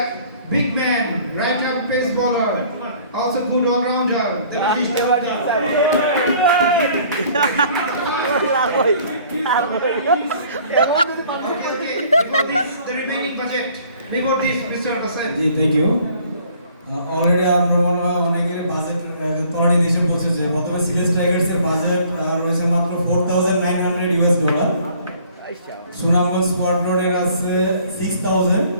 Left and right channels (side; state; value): both; inverted; correlation -0.56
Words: big man, right arm pace bowler, also good all rounder, the British Devata. Okay, before this, the remaining budget. Before this, Mr. Basan. Ji thank you already আমরা অনেকের budget তলানি দেশে পৌঁছেছে প্রথমে সিলেস টাইগার্সের budget রয়েছে মাত্র $4,900 সুনামগঞ্জ স্কোয়াড্রনের আছে 6,000